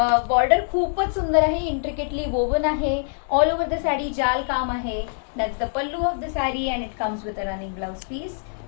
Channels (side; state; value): right; silent; 63 dB below the other